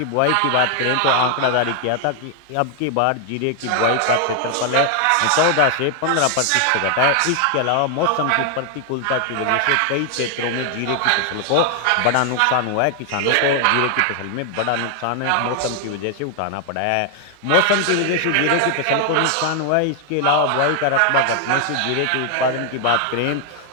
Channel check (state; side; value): different; both; correlation 0.00